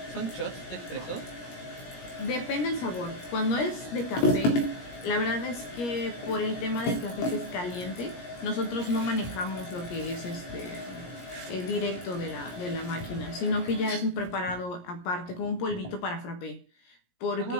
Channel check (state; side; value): late; right; 17 ms